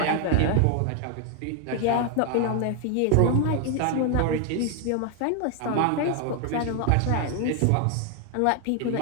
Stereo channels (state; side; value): different; both; correlation 0.00